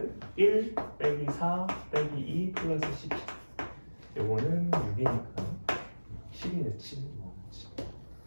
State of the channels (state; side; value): inverted; both; correlation -1.00